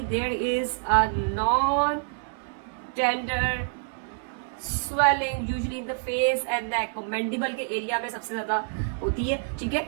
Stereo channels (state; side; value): silent; left; 59 dB below the other